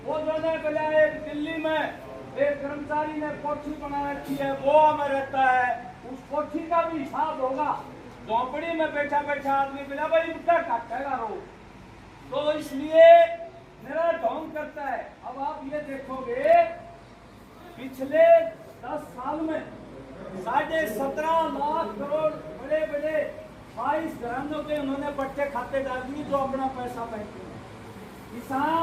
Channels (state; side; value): identical; both; correlation 1.00